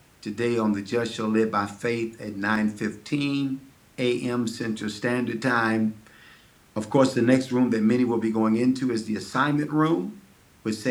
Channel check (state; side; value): identical; both; correlation 1.00